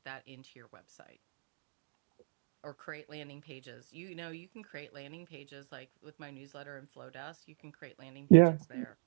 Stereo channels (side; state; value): left; silent; digital silence